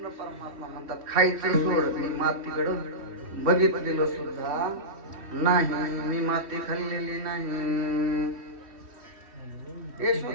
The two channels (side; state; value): left; late; 3.1 ms